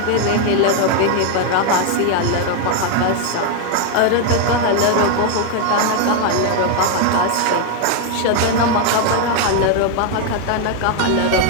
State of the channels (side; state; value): both; different; correlation 0.01